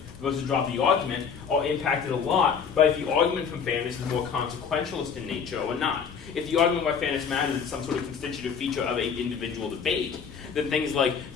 versus drop the argument are impacted a lot by if the argument from fairness is more consequentialist in nature or not. If the argument why fairness matters is some sort of constitutive feature of an individual debate, then things like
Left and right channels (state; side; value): quieter; right; 6.6 dB